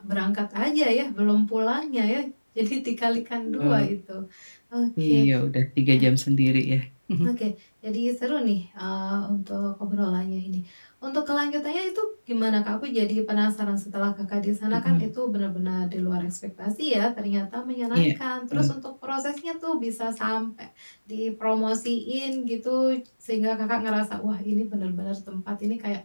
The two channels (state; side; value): inverted; both; correlation -1.00